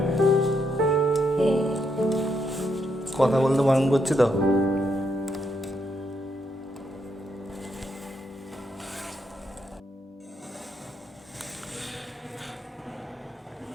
কথা বলতে বারণ করছি তো।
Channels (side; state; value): both; normal; correlation 0.78